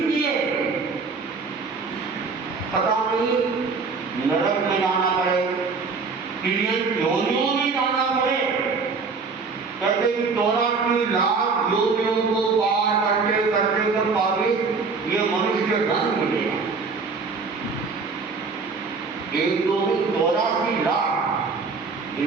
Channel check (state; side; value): quieter; left; 4.6 dB